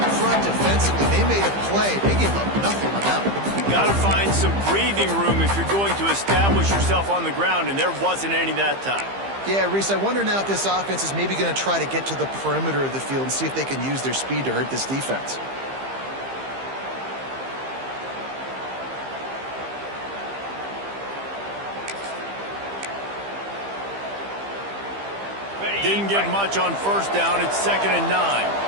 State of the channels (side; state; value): left; late; 15 ms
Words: front defensively, they made a play. They gave up nothing on that one. Got to find some breathing room if you're going to establish yourself on the ground, and there wasn't any that time. Yeah, Reese, I wonder now if this offense is maybe going to try to get to the perimeter of the field and see if they can use their speed to hurt this defense. Didn't get much on first down. It's 2nd and 9.